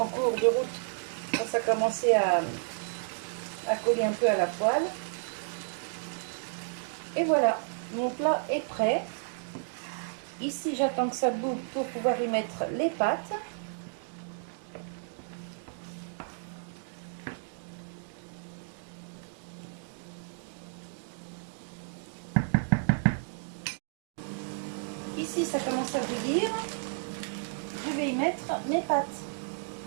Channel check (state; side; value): silent; left; digital silence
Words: cours de route. Quand ça commençait à coller un peu à la poêle. Et voilà, mon plat est prêt. Ici, j'attends que ça boue pour pouvoir y mettre les pâtes. Ici, ça commence à bouillir. Je vais y mettre mes pâtes.